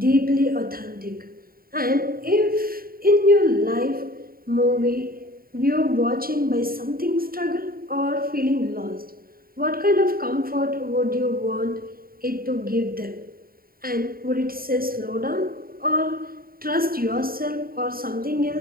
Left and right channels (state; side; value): late; left; 0.43 ms